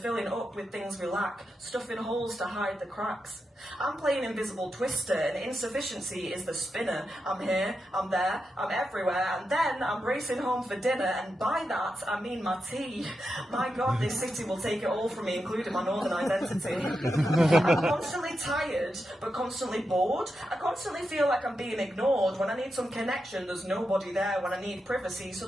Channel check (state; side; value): normal; both; correlation 0.87